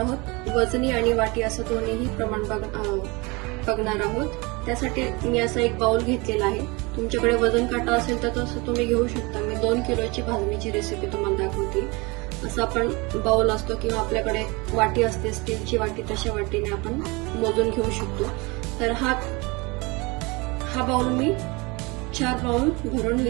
वजनी आणि वाटी असं दोन्हीही प्रमाण बघणार आहोत. त्यासाठी मी असा एक बाउल घेतलेला आहे. तुमच्याकडे वजन काटा असेल तर तसं तुम्ही घेऊ शकता. मी 2 किलोची भाजणीची रेसिपी तुम्हाला दाखवते. असं आपण बाउल असतो किंवा आपल्याकडे वाटी असते, स्टीलची वाटी, तशा वाटीने आपण मोजून घेऊ शकतो. तर हा बाउल मी 4 बाउल भरून मी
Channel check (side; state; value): left; quieter; 26.3 dB